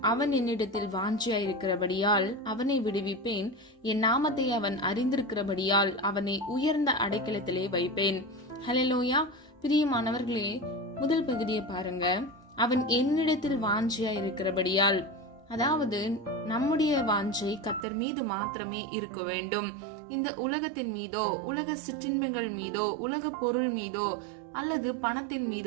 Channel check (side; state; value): left; drops out; at 17.9 s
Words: அவன் என்னிடத்தில் வாஞ்சியாயிருக்கிறபடியால் அவனை விடுவிப்பேன், என் நாமத்தை அவன் அறிந்திருக்கிறபடியால் அவனை உயர்ந்த அடைக்கலத்திலே வைப்பேன். ஹல்லேலூயா. பிரியமானவர்களே, முதல் பகுதியை பாருங்க. அவன் என்னிடத்தில் வாஞ்சியாயிருக்கிறபடியால், அதாவது நம்முடைய வாஞ்சை கர்த்தர் மீது மாத்திரமே இருக்க வேண்டும். இந்த உலகத்தின் மீதோ, உலக சிற்றின்பங்கள் மீதோ, உலக பொருள் மீதோ அல்லது பணத்தின்